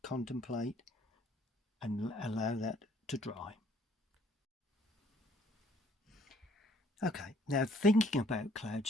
contemplate and allow that to dry. Okay, now thinking about cloud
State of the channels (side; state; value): both; normal; correlation 0.61